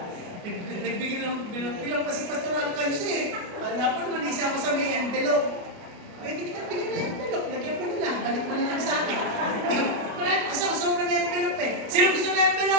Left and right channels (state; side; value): late; left; 29 ms